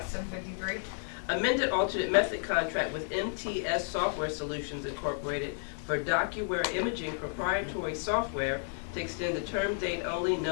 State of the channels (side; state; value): right; silent; digital silence